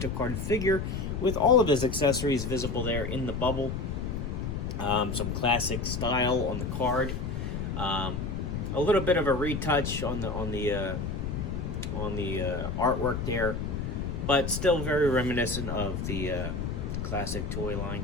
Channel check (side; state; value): left; noise; rumble, 3 dB below the sound